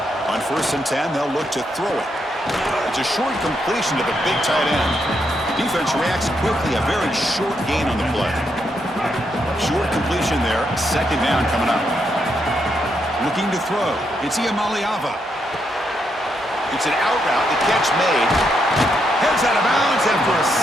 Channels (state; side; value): normal; both; correlation 0.79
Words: On 1st and 10, they'll look to throw it. It's a short completion to the big tight end. Defense reacts quickly, a very short gain on the play. Short completion there, 2nd down coming up. Looking to throw, it's Iamaleava. It's an out route, the catch made. Heads out of bounds after a